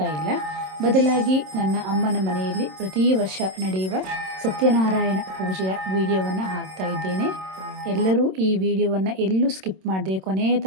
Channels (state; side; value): late; left; 27 ms